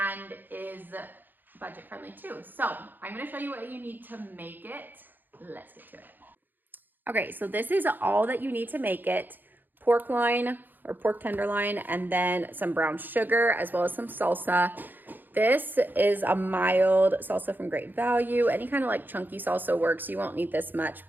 is budget friendly too. So I'm gonna show you what you need to make it. Let's get to it. Okay, so this is all that you need to make it. Pork loin or pork tenderloin, and then some brown sugar, as well as some salsa. This is a mild salsa from Great Value. Any kind of like chunky salsa works. You won't need this much,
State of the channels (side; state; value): left; late; 0.089 ms